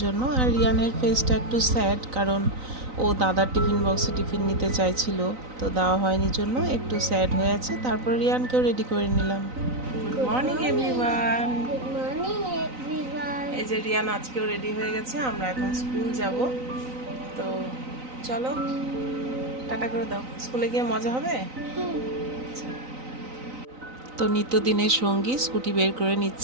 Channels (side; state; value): left; late; 3.9 ms